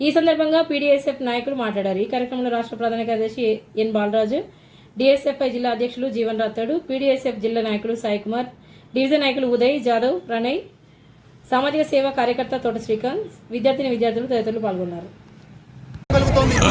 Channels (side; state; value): both; identical; correlation 1.00